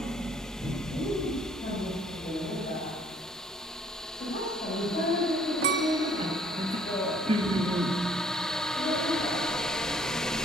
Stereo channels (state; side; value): normal; both; correlation 0.60